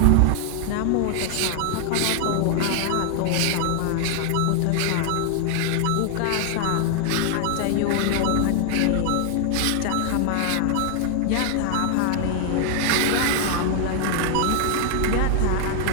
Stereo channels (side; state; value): both; different; correlation 0.00